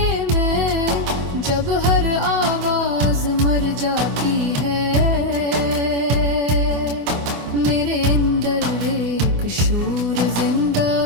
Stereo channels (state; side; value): late; left; 24 ms